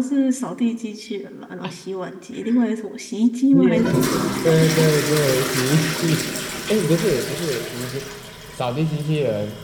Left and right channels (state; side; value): identical; both; correlation 1.00